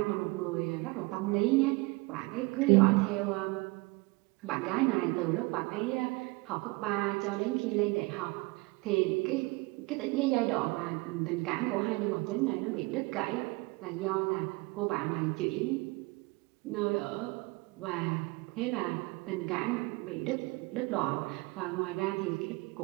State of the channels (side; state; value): left; quieter; 25.1 dB